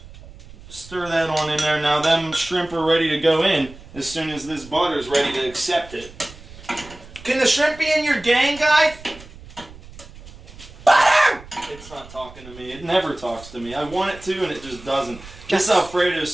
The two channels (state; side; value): noise; right; rumble, 19 dB below the sound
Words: stir that on in there. Now them shrimp are ready to go in as soon as this butter is ready to accept it. Can the shrimp be in your gang, guys? Butter! It's not talking to me. It never talks to me. I want it to and it just doesn't. This Alfredo